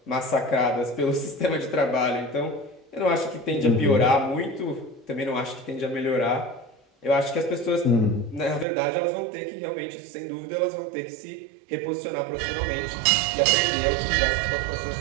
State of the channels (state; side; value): drops out; left; at 8.7 s